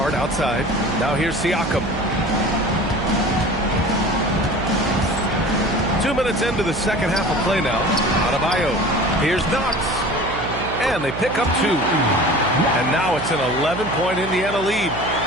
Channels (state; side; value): noise; right; hum, 8 dB below the sound